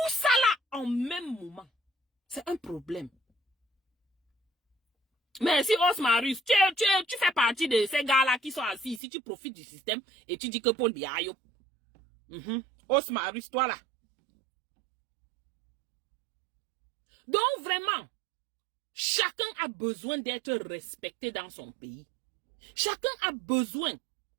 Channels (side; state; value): left; drops out; at 9.0 s